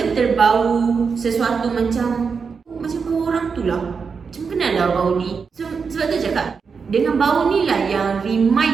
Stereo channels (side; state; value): left; quieter; 5.5 dB